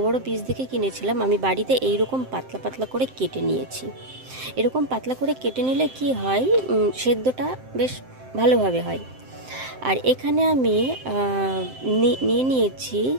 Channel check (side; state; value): left; late; 7.7 ms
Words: पिस देखे किनेछिलाम। आमी बाड़ीते एई रकम पातला पातला करे केटे नियेछि। एरकम पातला करे केटे निले कि हय सेद्धटा बेश भालोभावे हय। और एखाने आमी निये नियेछि